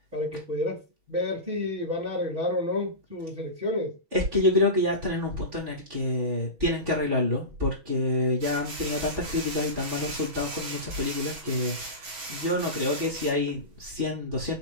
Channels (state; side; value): late; left; 6.1 ms